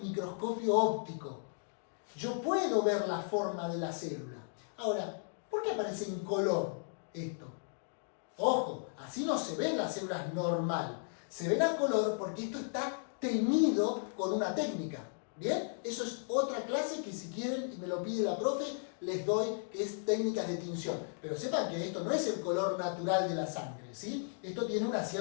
óptico. Yo puedo ver la forma de la célula. Ahora, ¿por qué aparece en color esto? Ojo, así no se ven las células normal. Se ven a color porque esto está teñido con una técnica. ¿Bien? Eso es otra clase que si quieren, y me lo pide la profe, les doy, que es técnicas de tinción. Pero sepan que esto no es el color natural de la sangre, ¿sí? Esto tiene una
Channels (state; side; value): silent; right; digital silence